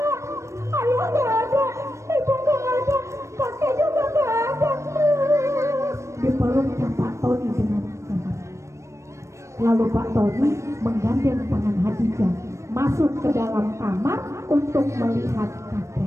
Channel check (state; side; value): late; left; 0.14 ms